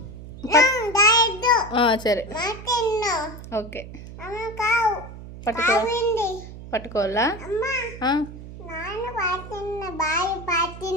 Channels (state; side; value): noise; right; hum, 14 dB below the sound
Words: సరే, ఓకే. పట్టుకోవాలా?